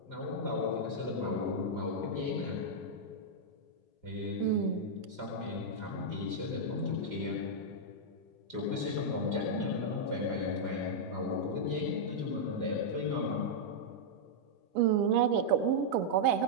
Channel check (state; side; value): late; left; 5.0 ms